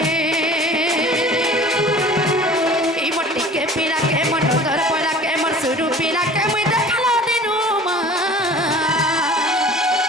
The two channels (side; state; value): both; normal; correlation 0.44